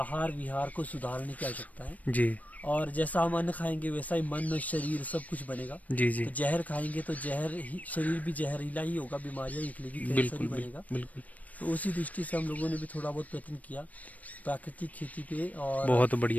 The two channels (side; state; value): right; late; 0.072 ms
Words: विहार को सुधारने की आवश्यकता है। जी और जैसा हम अन्न खाएंगे वैसा ही मन, शरीर सब कुछ बनेगा। जी जी, तो जहर खाएंगे तो जहर ही, शरीर भी जहरीला ही होगा, बीमारियां निकलेगी, कैंसर बिल्कुल ही बनेगा। बिल्कुल। तो उसी दृष्टि से हम लोगों ने भी थोड़ा बहुत प्रयत्न किया प्राकृतिक खेती पे। और बहुत